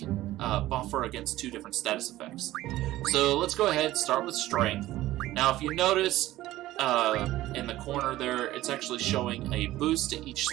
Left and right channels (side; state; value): left; quieter; 15.8 dB